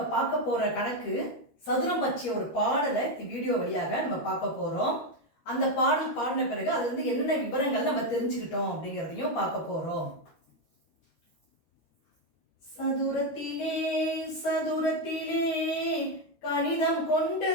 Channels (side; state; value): right; late; 13 ms